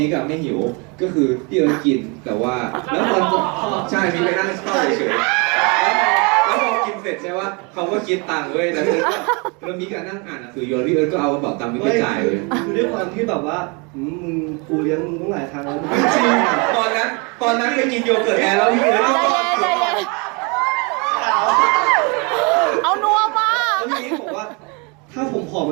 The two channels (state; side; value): quieter; left; 31.3 dB